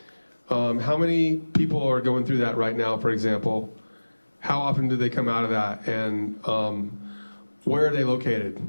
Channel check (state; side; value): inverted; both; correlation -1.00